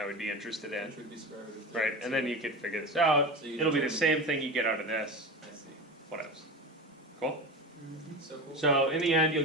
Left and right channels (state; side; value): normal; both; correlation 0.26